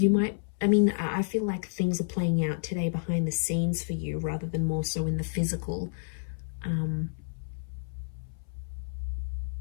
might, I feel like things are playing out today behind the scenes for you rather than more so in the physical.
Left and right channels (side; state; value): right; silent; 58 dB below the other